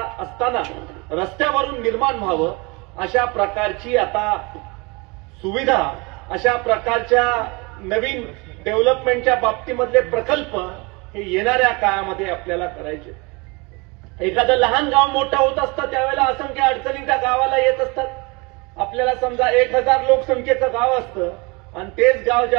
रस्त्यावरून निर्माण व्हावं, अशा प्रकारची आता सुविधा, अशा प्रकारच्या नवीन डेव्हलपमेंटच्या बाबतीमधले प्रकल्प हे येणाऱ्या काळामध्ये आपल्याला करायचे. एखादं लहान गाव मोठं होत असतं त्यावेळेला असंख्य अडचणी त्या गावाला येत असतात. आपल्याला समजा 1000 लोकसंख्येचं गाव असतं आणि तेच गाव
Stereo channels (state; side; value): quieter; left; 27.6 dB